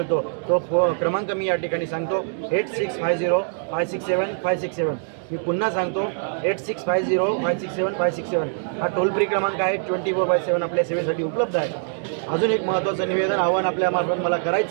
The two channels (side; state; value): left; silent; 63 dB below the other